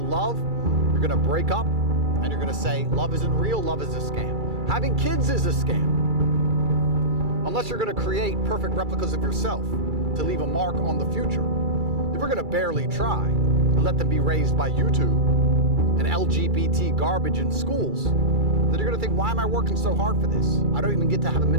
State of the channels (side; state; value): left; late; 2.3 ms